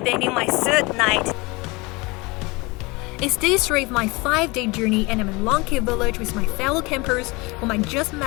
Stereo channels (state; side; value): quieter; right; 25.2 dB